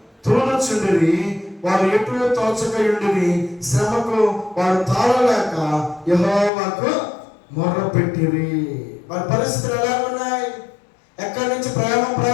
తోలుచుండిరి. వారు ఎటు తోచకయుండిరి. శ్రమకు వారు తాళలేక యెహోవాకు మొర్రపెట్టిరి. వారి పరిస్థితులు ఎలా ఉన్నాయి? ఎక్కడి నుంచి ప్రయాణం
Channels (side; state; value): right; drops out; at 6.5 s